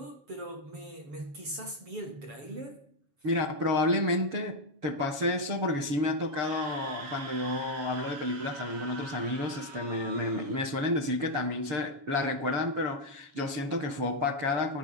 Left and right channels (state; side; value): late; left; 7.2 ms